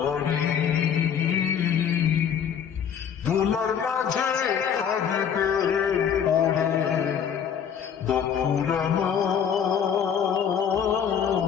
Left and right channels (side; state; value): right; quieter; 7.9 dB